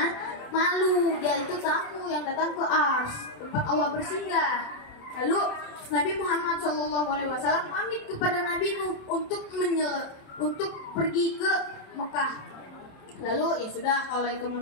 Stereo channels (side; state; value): right; late; 27 ms